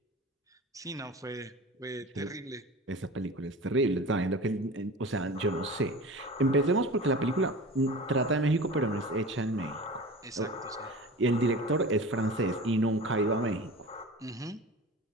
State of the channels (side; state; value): both; normal; correlation 0.35